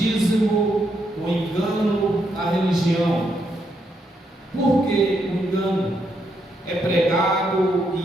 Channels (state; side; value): normal; both; correlation 0.78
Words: o engano da religião. Por que o engano? É pregado